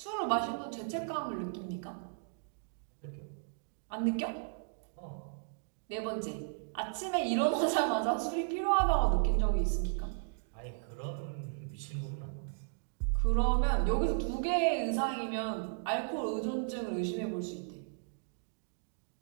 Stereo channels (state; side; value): silent; left; digital silence